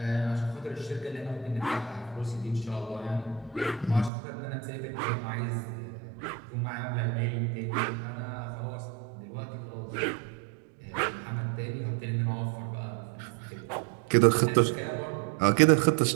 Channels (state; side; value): drops out; left; at 4.1 s